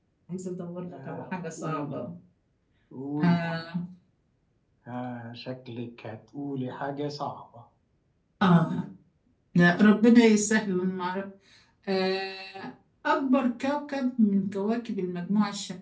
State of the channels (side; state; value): both; identical; correlation 1.00